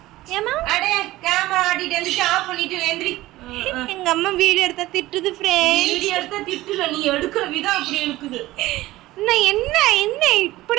ஏமா அடே கேமரா ஆடிட்டு வந்து ஆஃப் பண்ணிட்டு வேந்திரி. எங்க அம்மா வீடியோ எடுத்தா திட்டுது ஃப்ரெண்ட். வீடியோ எடுத்தா திட்டுல, நீ எடுக்கிற விதம் அப்படி இருக்குது. நான் என்ன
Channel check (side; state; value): left; quieter; 17.3 dB